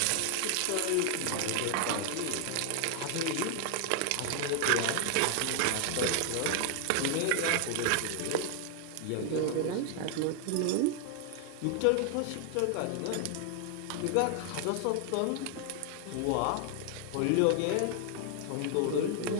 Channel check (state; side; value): different; both; correlation 0.00